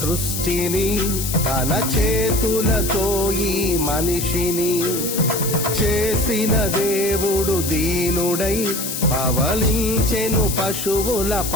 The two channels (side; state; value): left; noise; hiss, 4 dB below the sound